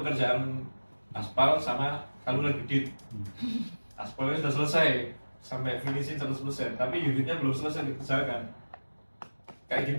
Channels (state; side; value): inverted; both; correlation -1.00